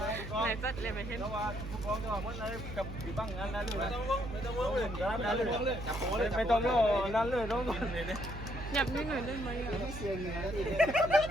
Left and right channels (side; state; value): right; noise; hum, 8 dB below the sound